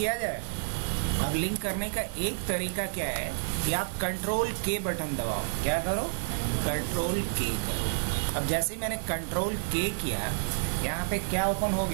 जाए। अब लिंक करने का एक तरीका क्या है कि आप कंट्रोल के बटन दबाओ। क्या करो, कंट्रोल के करो। अब जैसे ही मैंने कंट्रोल के किया, यहाँ पे क्या ओपन हो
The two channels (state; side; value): silent; left; digital silence